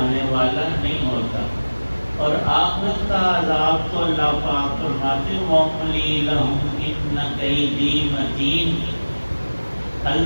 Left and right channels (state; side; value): inverted; both; correlation -1.00